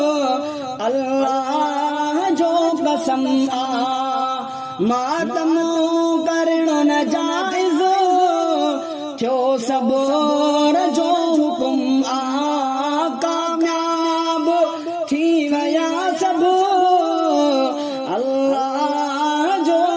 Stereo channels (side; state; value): both; identical; correlation 1.00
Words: अल्लाह जो कसम मातम करण न जाइज़ थियो सब्र जो हुकुम कामयाब थी वया सब अल्लाह जो